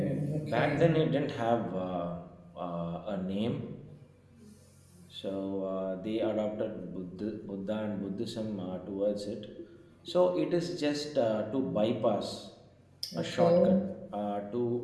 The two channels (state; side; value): identical; both; correlation 1.00